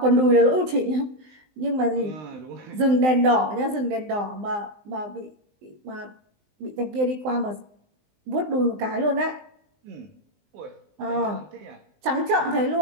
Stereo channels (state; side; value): late; left; 19 ms